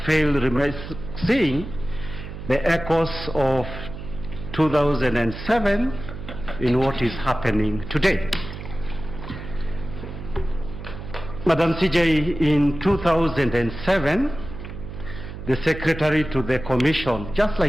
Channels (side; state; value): right; noise; hum, 11 dB below the sound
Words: fail seeing the echoes of 2007 in what is happening today. Madam CJ, in 2007, the secretary to the commission, just